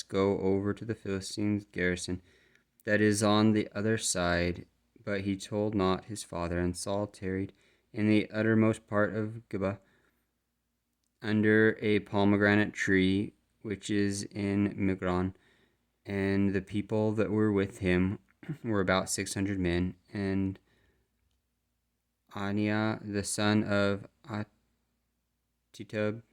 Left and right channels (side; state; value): both; identical; correlation 1.00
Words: go over to the Philistines' garrison that is on the other side. But he told not his father, and Saul tarried in the uttermost part of Gibeah, under a pomegranate tree which is in Migron. And the people that were with him were about 600 men, and Aniah the son of Ahitub,